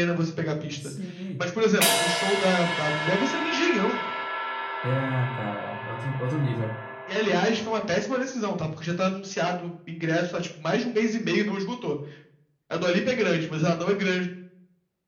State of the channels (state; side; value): identical; both; correlation 1.00